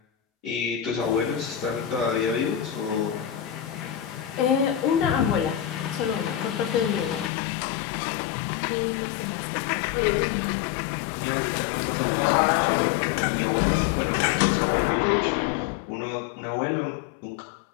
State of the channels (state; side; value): drops out; right; at 7.3 s